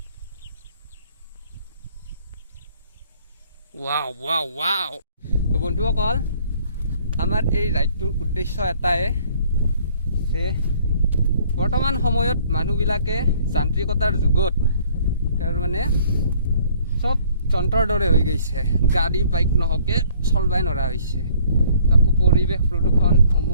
वाव वाव वाव तो বন্ধুসকল আমাৰ এই ৰাইডটোৰ উদ্দেশ্য এটাই যে বৰ্তমান সময়ত মানুহবিলাকে যান্ত্ৰিকতাৰ যুগত তাৰ মানে চব যন্ত্ৰৰ দৰে হৈ গৈছে গাড়ী বাইক নহকে চলবাই নৰা হৈছে তাকো পৰিৱেশ প্ৰদূষণ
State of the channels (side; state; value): both; inverted; correlation -0.59